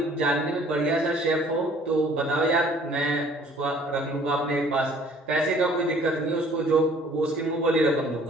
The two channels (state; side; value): normal; both; correlation 0.55